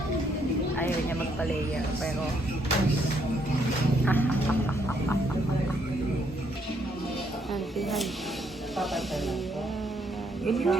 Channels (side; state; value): both; normal; correlation 0.71